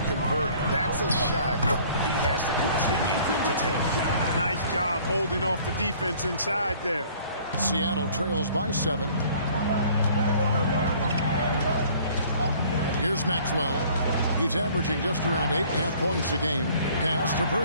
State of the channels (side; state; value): both; inverted; correlation -0.54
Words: convert. That's a shot he has to continue to take. Nice job holding off the defense inside there. Seattle trails by 7. Here's Maxwell. He's averaging just around 8.5 points a game. Pass to